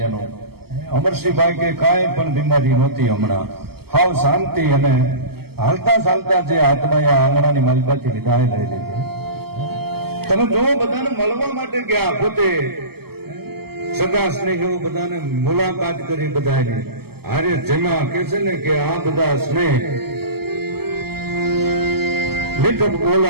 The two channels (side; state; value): left; late; 0.96 ms